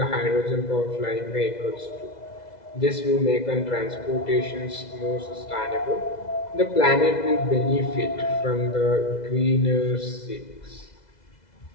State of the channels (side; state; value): right; late; 2.0 ms